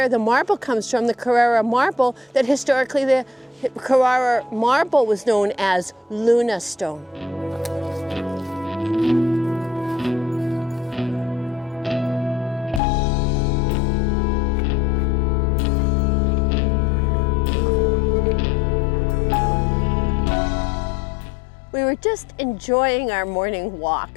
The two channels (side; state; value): right; drops out; at 12.8 s